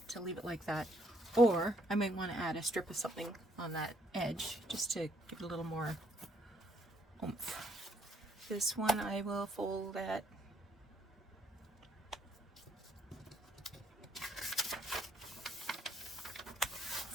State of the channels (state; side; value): normal; both; correlation 0.69